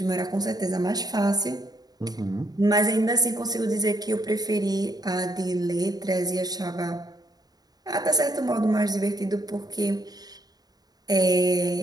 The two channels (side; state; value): left; late; 0.19 ms